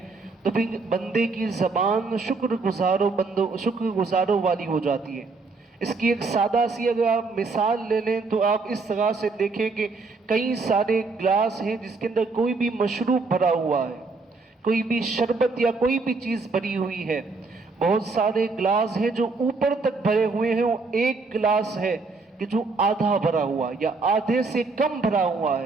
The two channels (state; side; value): quieter; left; 4.0 dB